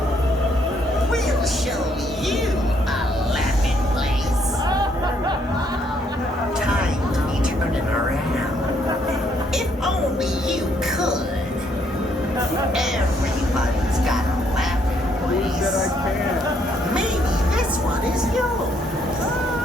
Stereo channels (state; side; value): normal; both; correlation 0.70